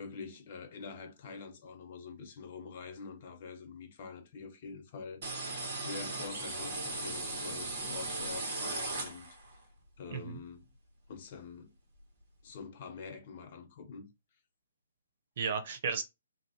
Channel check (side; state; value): both; inverted; correlation -0.56